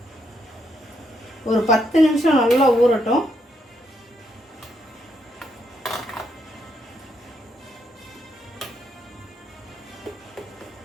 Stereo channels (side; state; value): both; normal; correlation 0.76